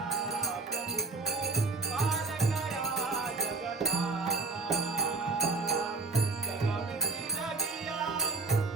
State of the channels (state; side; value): quieter; left; 3.8 dB